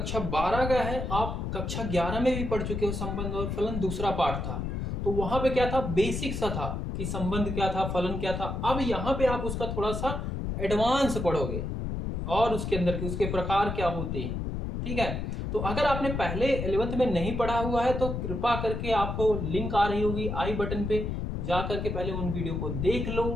12 का है। आप कक्षा 11 में भी पढ़ चुके हो। संबंध और फलन दूसरा पार्ट था, तो वहां पे क्या था, बेसिक सा था कि संबंध क्या था, फलन क्या था। अब यहाँ पे आप उसका थोड़ा सा एडवांस पढ़ोगे और उसके अंदर के उसके प्रकार क्या होते हैं। ठीक है, तो अगर आपने पहले 11th में नहीं पढ़ा हुआ है तो कृपा करके आपको लिंक आ रही होगी आई बटन पे, जा करके पहले उन वीडियो को देख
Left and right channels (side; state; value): left; noise; rumble, 3 dB below the sound